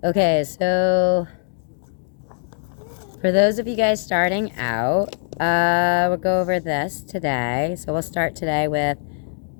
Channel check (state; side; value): silent; right; digital silence